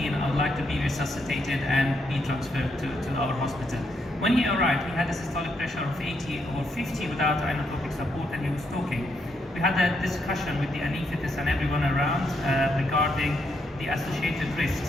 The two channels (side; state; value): both; normal; correlation 0.78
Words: I would like to be resuscitated and be transferred to our hospital. When he arrived, he had a systolic pressure of 80 or 50 without inotropic support, and he was talking. We had a discussion with the anaesthetist and everyone around regarding the associated risks,